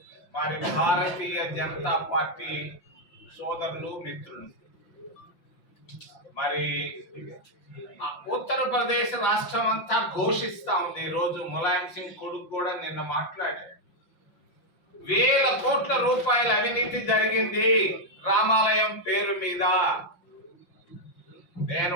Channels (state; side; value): late; right; 5.7 ms